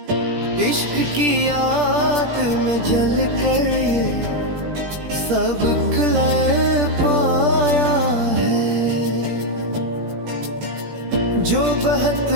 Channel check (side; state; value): left; late; 17 ms